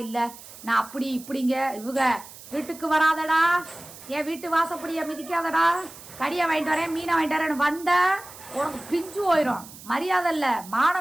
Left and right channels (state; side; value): noise; right; hiss, 17 dB below the sound